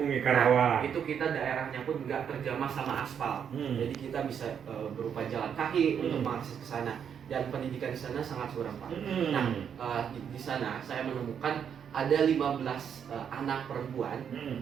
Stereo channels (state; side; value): quieter; left; 7.9 dB